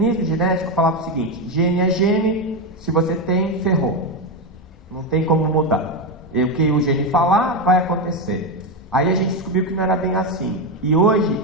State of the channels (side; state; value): both; normal; correlation 0.10